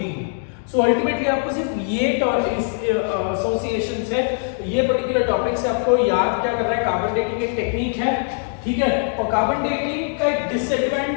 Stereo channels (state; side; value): silent; right; 65 dB below the other